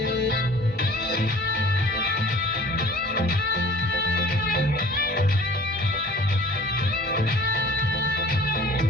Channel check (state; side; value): normal; both; correlation 0.48